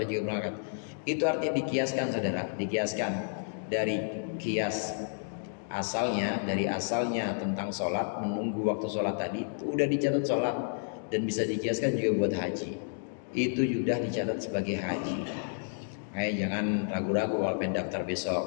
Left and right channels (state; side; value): silent; right; digital silence